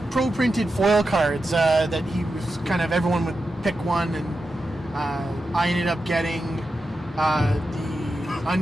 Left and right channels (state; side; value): normal; both; correlation 0.89